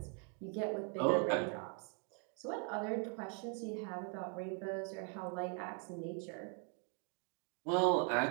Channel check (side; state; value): left; quieter; 39.6 dB